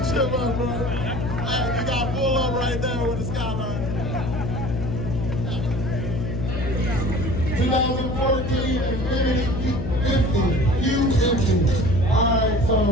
you, bro. Hey, you got pull up right there with the skyline. 2014 Infinity Q50. Alright, so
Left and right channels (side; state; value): left; noise; hum, 3 dB below the sound